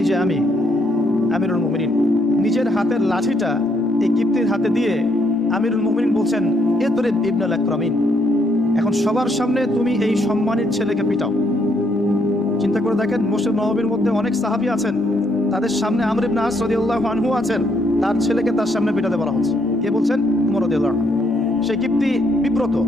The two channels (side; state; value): both; normal; correlation 0.72